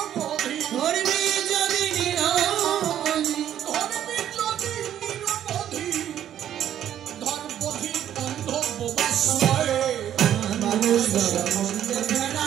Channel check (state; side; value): quieter; left; 10.7 dB